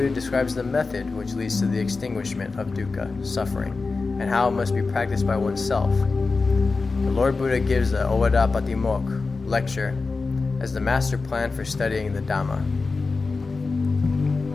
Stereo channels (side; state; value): right; quieter; 4.1 dB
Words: describes the method which leads to the extinguishment of dukkha, suffering, and how it must be practiced by oneself. The Lord Buddha gives the Owara Patimoc lecture as the master plan for studying the Dhamma.